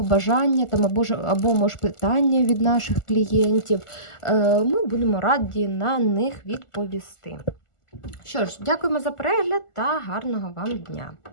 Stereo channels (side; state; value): right; late; 1.4 ms